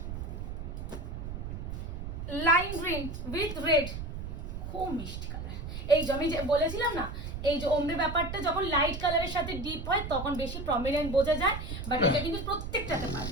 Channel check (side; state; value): right; noise; rumble, 6 dB below the sound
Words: উইথ রেড, খুব মিষ্টি কালার। এই যে আমি যে বলেছিলাম না, এই যে ওমরে ব্যাপারটা যখন লাইট কালারের সাথে ডিপ হয় তখন বেশি প্রমিনেন্ট বোঝা যায়, বাট এটা কিন্তু প্রত্যেকটাতে পার।